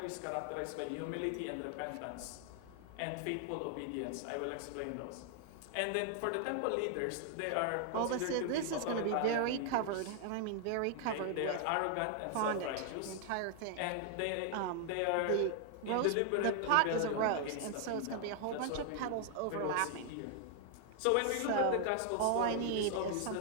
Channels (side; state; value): both; different; correlation 0.00